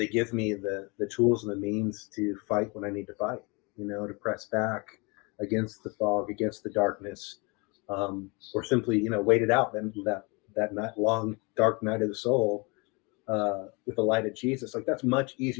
give me the tools and the means to fight when I need to fight. To press back against the fog, against the darkness, or simply wait it out. Then that night, long dark night of the soul, with the light of Jesus. Like that's much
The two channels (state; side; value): quieter; right; 29.3 dB